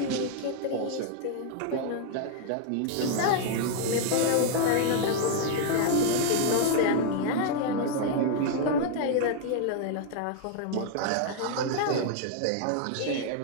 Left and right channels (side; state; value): both; different; correlation 0.00